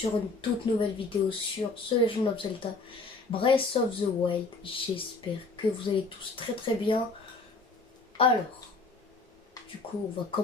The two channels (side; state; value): right; quieter; 3.6 dB